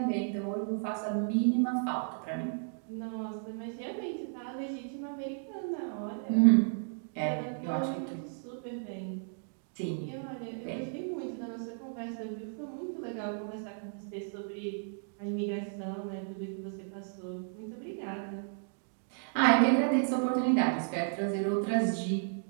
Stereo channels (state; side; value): silent; left; digital silence